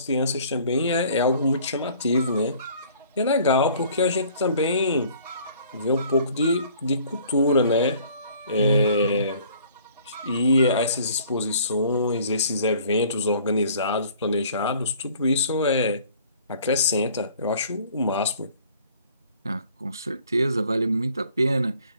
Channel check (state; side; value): inverted; both; correlation -0.54